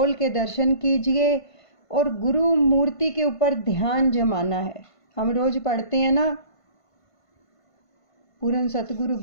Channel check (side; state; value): right; late; 1.5 ms